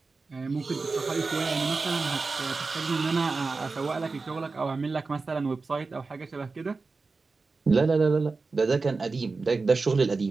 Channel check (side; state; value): left; quieter; 4.0 dB